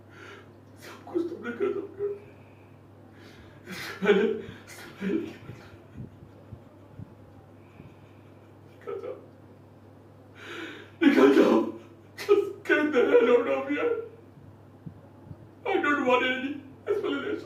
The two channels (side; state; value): both; identical; correlation 1.00